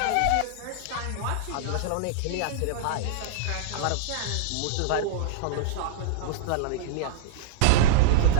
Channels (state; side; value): different; both; correlation -0.01